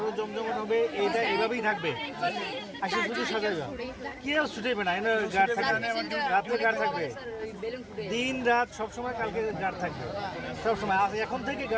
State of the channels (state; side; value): identical; both; correlation 1.00